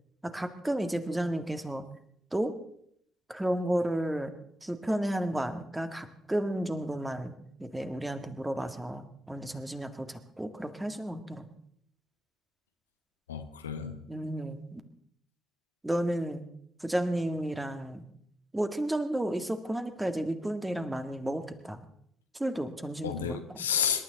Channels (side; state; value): both; normal; correlation 0.77